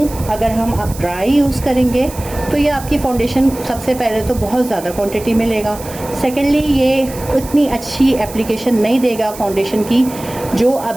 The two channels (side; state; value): right; noise; hiss, 15 dB below the sound